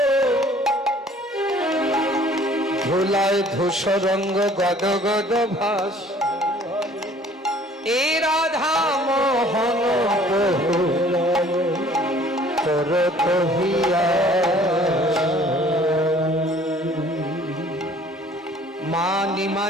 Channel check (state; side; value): normal; both; correlation 0.54